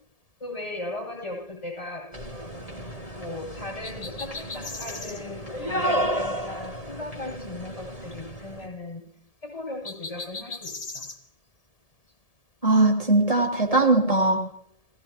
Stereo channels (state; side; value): late; right; 1.7 ms